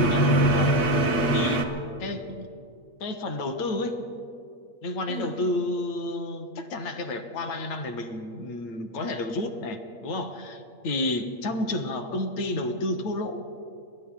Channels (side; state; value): right; late; 8.6 ms